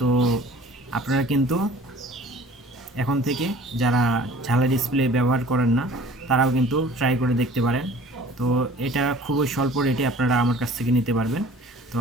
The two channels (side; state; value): both; normal; correlation 0.48